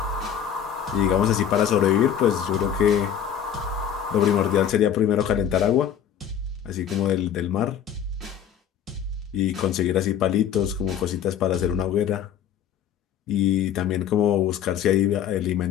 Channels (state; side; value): quieter; right; 9.1 dB